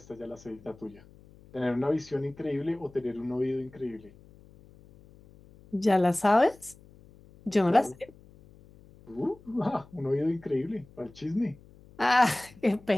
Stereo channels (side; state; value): left; noise; hum, 24 dB below the sound